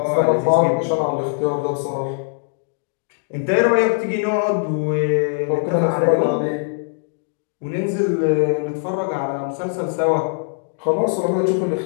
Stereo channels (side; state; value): right; silent; digital silence